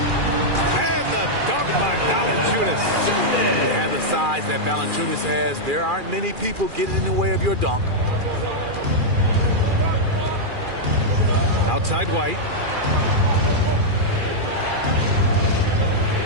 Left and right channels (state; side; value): late; left; 2.4 ms